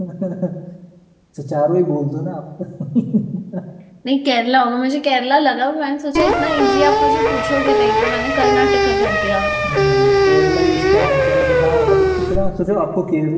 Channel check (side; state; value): both; identical; correlation 1.00